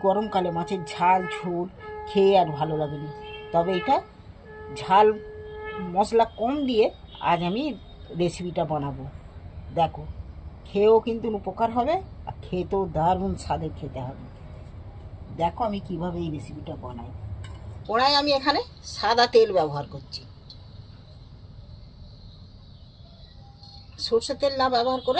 গরমকালে মাছের ঝাল ঝোল খেয়ে আর ভালো লাগেনি, তবে এটা ঝাল মশলা কম দিয়ে আজ আমি রেসিপিটা বানাবো। দেখো, খেয়েও কিন্তু উপকার হবে, আর খেতেও দারুণ স্বাদের খেতে হবে। দেখো আমি কিভাবে এই রেসিপিটা বানাই। কড়াই আমি এখানে সাদা তেল ব্যবহার করছি। সরষের তেল না ব্যবহার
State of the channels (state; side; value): identical; both; correlation 1.00